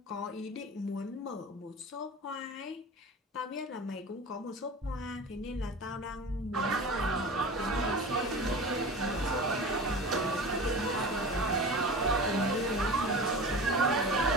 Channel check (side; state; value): both; normal; correlation 0.34